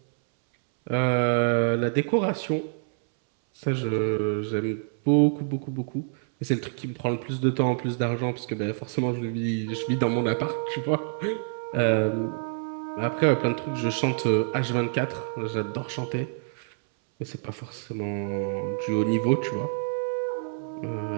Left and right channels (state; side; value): silent; left; 60 dB below the other